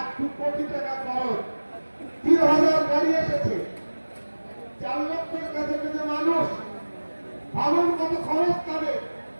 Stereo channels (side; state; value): both; inverted; correlation -1.00